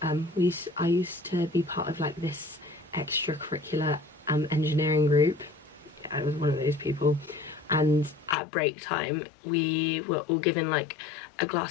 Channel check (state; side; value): drops out; right; at 8.3 s